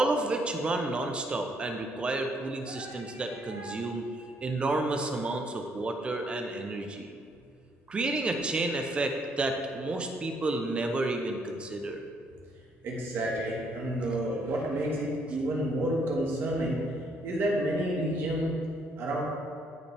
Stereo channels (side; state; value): both; normal; correlation 0.70